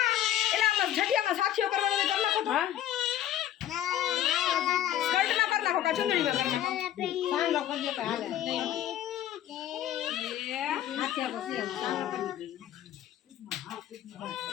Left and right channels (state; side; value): quieter; right; 11.9 dB